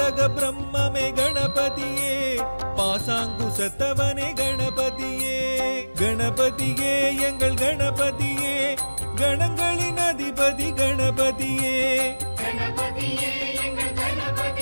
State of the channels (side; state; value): both; inverted; correlation -1.00